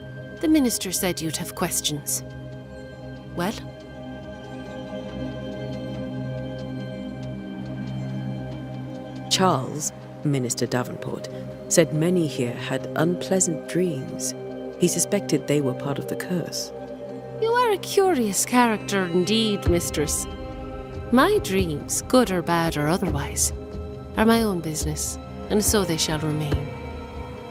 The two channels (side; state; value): both; identical; correlation 1.00